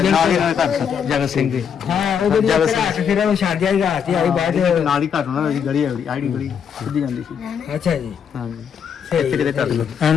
ਹੀ ਘਰ ਜਗਤ ਸਿੰਘ ਦੇ ਹਾਂ ਉਹ ਜਿਹੜੀ ਰਾਤ ਫਿਰ ਉਹ ਛੱਡਿਆ ਹੀ ਰਾਤ ਹੀ ਆਈ ਬਾਅਦ ਨਾਲ ਹੀ ਘਰ ਉਹਨਾਂ ਦੀ ਗਲੀ ਆਈਡੀ ਗਲੀ ਸਿੱਧੀ ਜਾਂਦੀ ਸੀ ਅੱਛਾ ਜੀ ਹਾਂਜੀ ਇੱਥੇ ਕਿਤੇ ਕਰ ਲਓ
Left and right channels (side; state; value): right; quieter; 7.5 dB